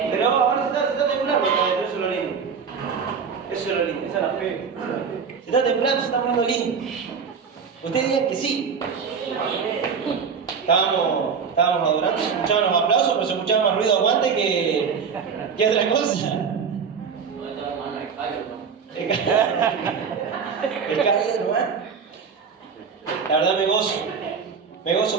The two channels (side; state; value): left; quieter; 6.1 dB